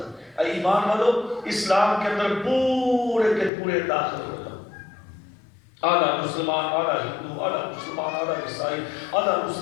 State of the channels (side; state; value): right; drops out; at 3.5 s